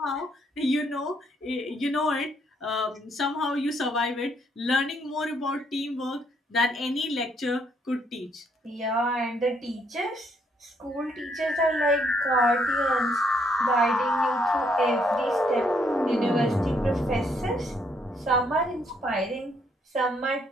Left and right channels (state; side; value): normal; both; correlation 0.71